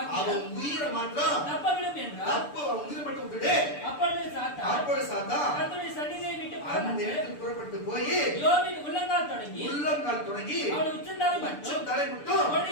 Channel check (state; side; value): late; right; 6.9 ms